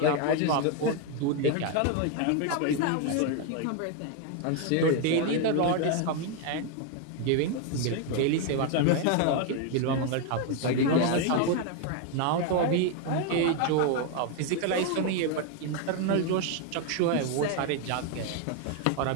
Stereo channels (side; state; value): both; different; correlation 0.01